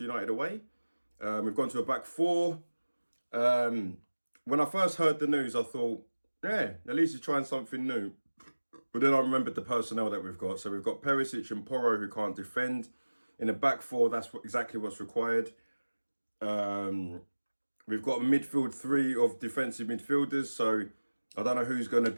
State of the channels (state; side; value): inverted; both; correlation -1.00